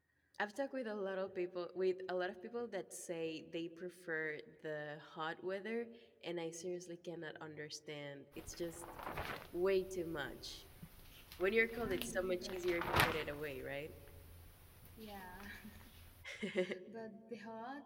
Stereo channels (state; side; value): identical; both; correlation 1.00